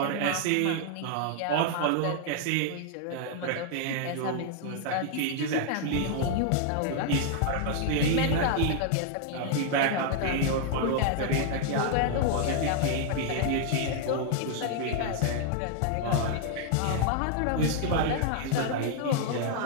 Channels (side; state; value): both; different; correlation 0.00